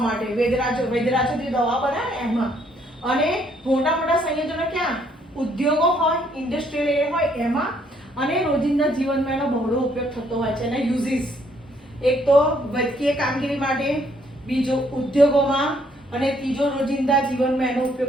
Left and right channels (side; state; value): both; normal; correlation 0.68